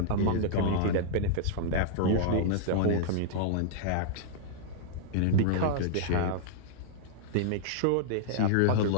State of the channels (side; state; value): both; different; correlation -0.01